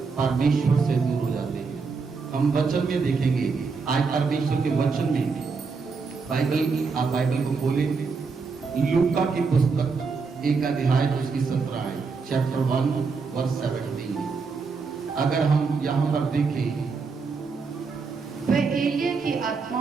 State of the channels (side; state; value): left; quieter; 4.8 dB